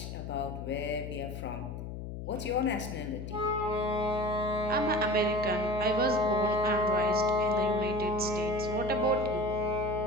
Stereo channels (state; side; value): noise; left; hum, 8 dB below the sound